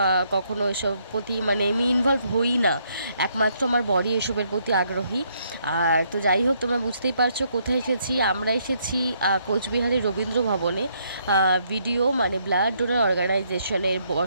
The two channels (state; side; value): inverted; both; correlation -0.72